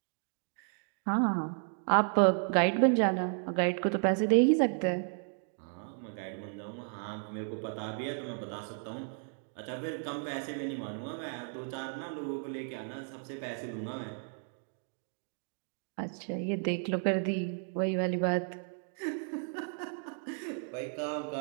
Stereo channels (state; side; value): silent; left; 55 dB below the other